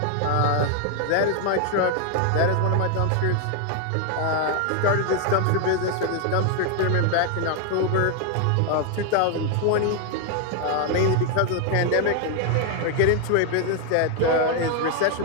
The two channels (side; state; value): both; different; correlation 0.00